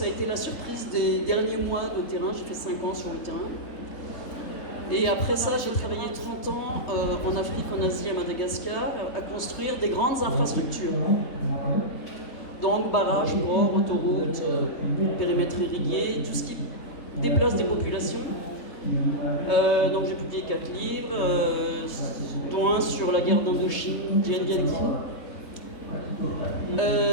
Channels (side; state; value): right; late; 3.2 ms